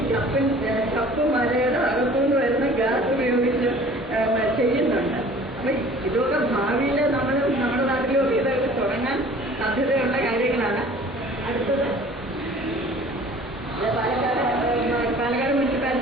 ചപ്പ് മലയുടെ അകത്തുനിന്ന് വരുന്ന ഗ്യാസ് ഉപയോഗിച്ച് ചെയ്യുന്നുണ്ട്. അപ്പൊ ഇതൊക്കെ ഭാവിയിൽ നമ്മുടെ നാട്ടിലൊക്കെ ഇതൊക്കെ തുടങ്ങാൻ സാധ്യതയുള്ള കാര്യങ്ങളാണ്. അടുത്തത് പാലക്കാട്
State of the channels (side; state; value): both; normal; correlation 0.48